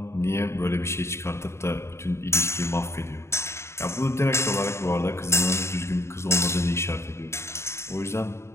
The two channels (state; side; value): late; right; 0.13 ms